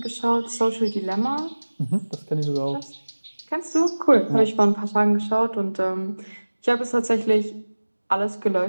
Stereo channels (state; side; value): inverted; both; correlation -1.00